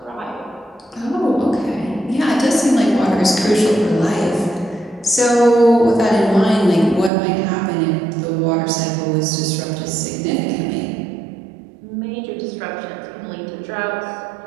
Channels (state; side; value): drops out; left; at 7.1 s